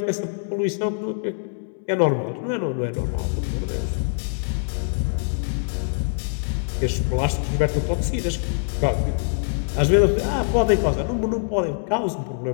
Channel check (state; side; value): silent; right; digital silence